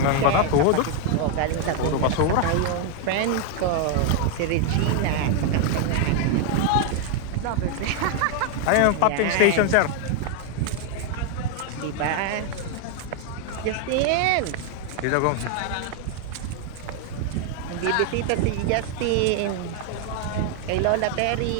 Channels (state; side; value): different; both; correlation 0.01